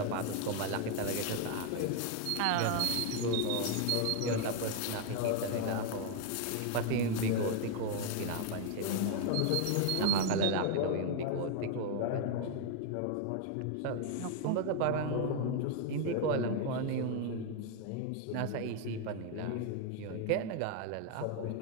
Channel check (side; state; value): both; different; correlation 0.01